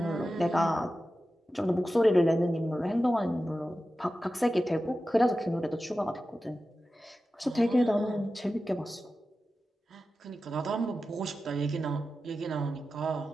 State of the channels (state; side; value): normal; both; correlation 0.93